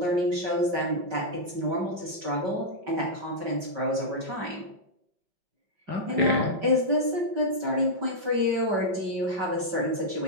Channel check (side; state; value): left; late; 5.2 ms